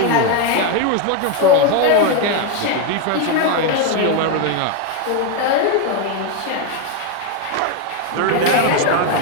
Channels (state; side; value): different; both; correlation 0.02